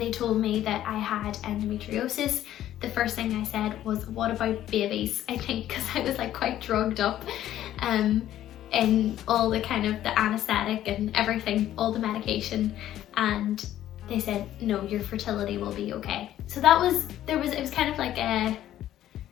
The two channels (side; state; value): right; quieter; 12.5 dB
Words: told me that I had endometriosis, the first thing I said was, what about babies? I think because I was like quite drugged up in all the kind of the anesthetic and everything, all the medication, and they said, no, your fertility will be okay. So it was kind of like